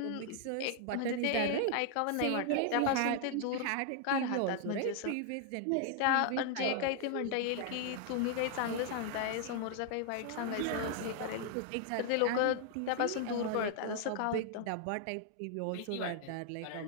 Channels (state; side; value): different; both; correlation 0.00